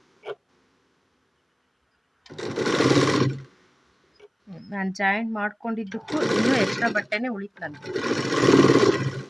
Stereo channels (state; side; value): identical; both; correlation 1.00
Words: ನಾನು ಜಾಯಿಂಟ್ ಮಾಡ್ಕೊಂಡಿದ್ದಕ್ಕೂ ಇನ್ನೂ ಎಕ್ಸ್ಟ್ರಾ ಬಟ್ಟೆನೇ ಉಳಿತು ನನಗೆ.